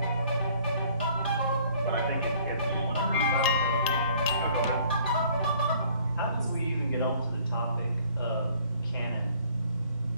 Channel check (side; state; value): both; inverted; correlation -0.57